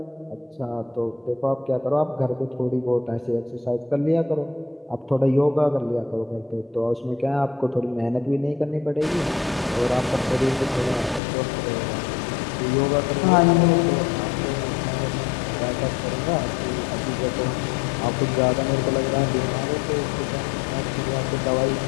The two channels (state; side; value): drops out; right; at 11.2 s